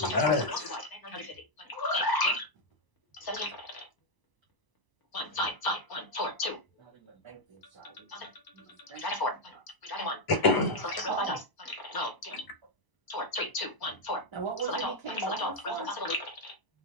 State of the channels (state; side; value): late; right; 1.0 ms